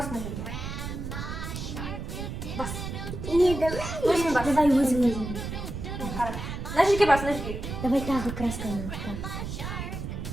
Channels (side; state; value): right; noise; rumble, 6 dB below the sound